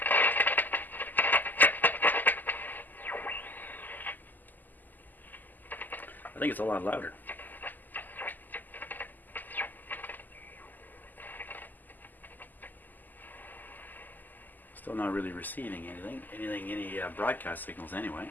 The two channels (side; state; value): right; late; 0.086 ms